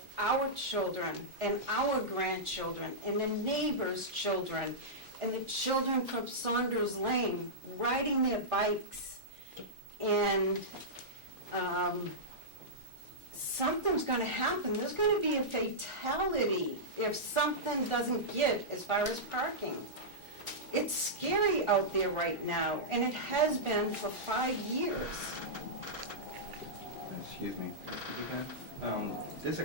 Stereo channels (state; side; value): normal; both; correlation -0.12